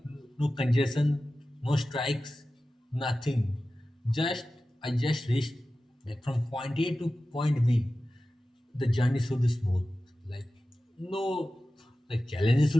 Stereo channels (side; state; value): both; normal; correlation 0.95